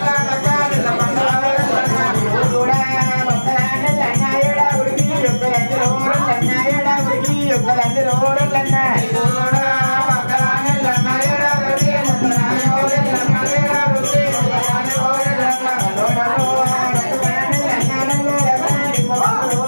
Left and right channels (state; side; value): inverted; both; correlation -1.00